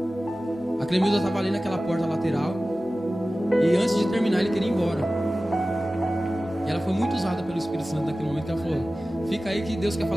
A Clemilda estava ali naquela porta lateral, e antes de terminar ele queria ir embora. E ela foi muito usada pelo Espírito Santo naquele momento, que ela falou: fica aí que Deus quer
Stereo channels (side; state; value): both; normal; correlation 0.96